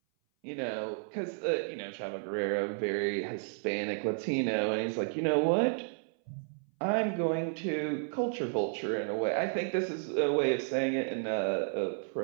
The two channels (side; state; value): left; silent; 56 dB below the other